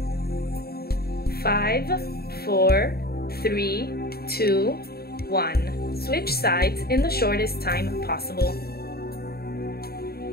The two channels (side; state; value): right; late; 0.45 ms